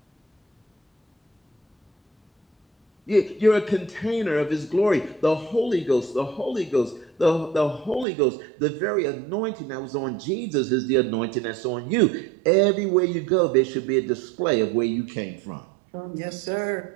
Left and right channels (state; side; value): drops out; left; at 8.1 s